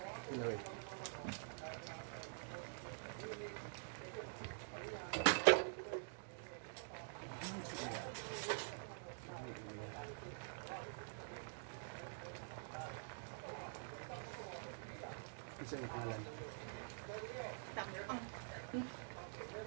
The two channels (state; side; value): silent; left; digital silence